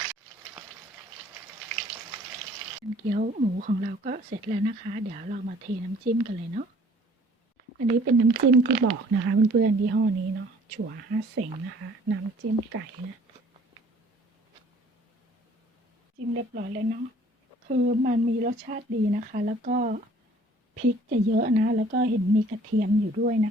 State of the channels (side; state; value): both; normal; correlation 0.54